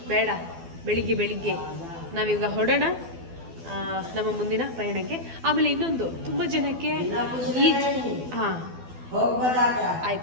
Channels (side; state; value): left; late; 12 ms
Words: ಬೇಡ. ಬೆಳಿಗ್ಗೆ ನಾವೀಗ ಹೊರಡೋಣ ನಮ್ಮ ಮುಂದಿನ ಪಯಣಕ್ಕೆ. ಆಮೇಲೆ ಇನ್ನೊಂದು, ತುಂಬ ಜನಕ್ಕೆ ಈ